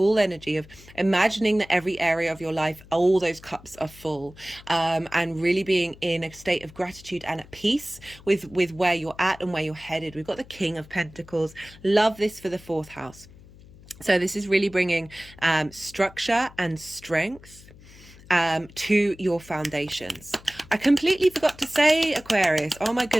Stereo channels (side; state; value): left; noise; hum, 22 dB below the sound